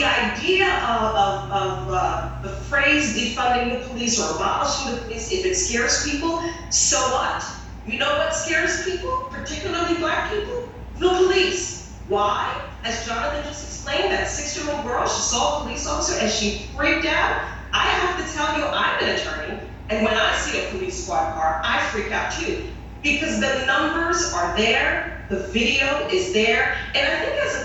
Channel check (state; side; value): identical; both; correlation 1.00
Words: idea of the phrase defunding the police or abolishing the police, if it scares people, so what? You know what scares people, particularly Black people? The police. Why? As Jonathan just explained, that 6-year-old girl, she saw a police officer and she freaked out. I have to tell you, I'm an attorney, and when I see a police squad car, I freak out too. Because the numbers are there, the video is there, and I think as